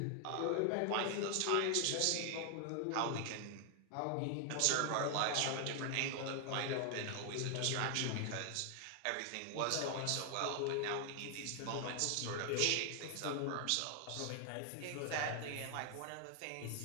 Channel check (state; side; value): different; both; correlation 0.00